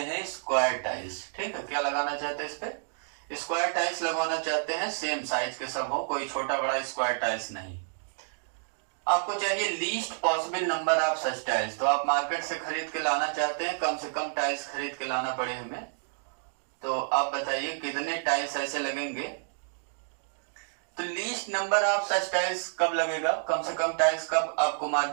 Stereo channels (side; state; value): left; silent; digital silence